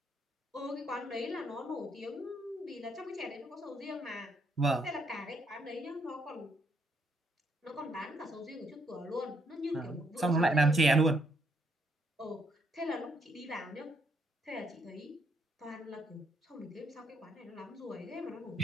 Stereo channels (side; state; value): both; normal; correlation 0.73